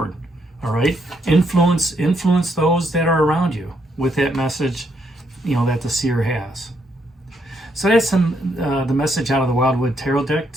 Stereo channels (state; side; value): normal; both; correlation 0.75